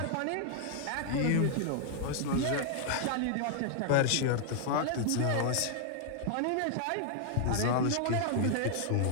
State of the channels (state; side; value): different; both; correlation 0.00